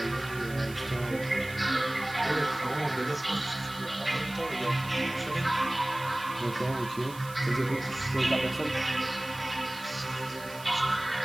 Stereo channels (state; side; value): noise; right; hiss, 17 dB below the sound